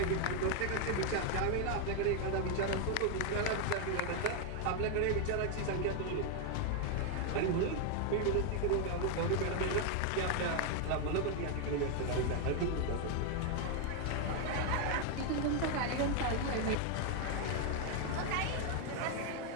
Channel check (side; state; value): both; different; correlation 0.00